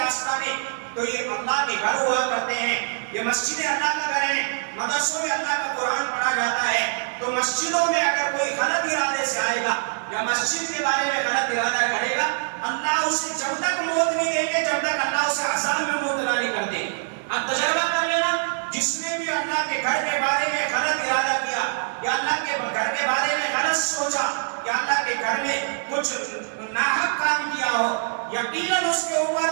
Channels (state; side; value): silent; left; digital silence